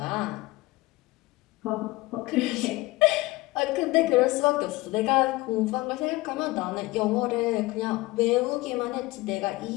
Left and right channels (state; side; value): quieter; right; 20.9 dB